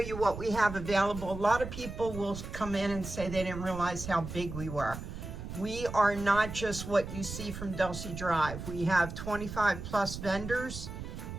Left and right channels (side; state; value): right; noise; rumble, 9 dB below the sound